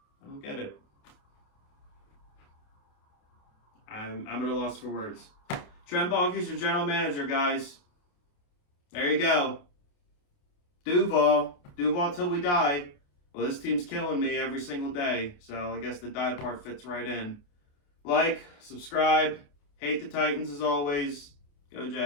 I don't get it. I'm at a loss for words. Trent Baalke is your general manager, guys. There you go. Duval till we die. Well, this team's killing me every single day, so I guess the die part fits right in. Like, subscribe, hate the Titans as always. Go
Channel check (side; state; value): right; late; 28 ms